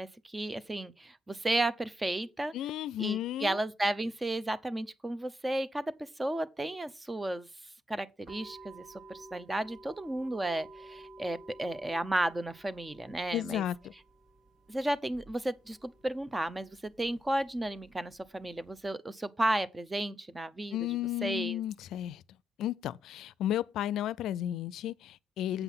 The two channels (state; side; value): normal; both; correlation 0.81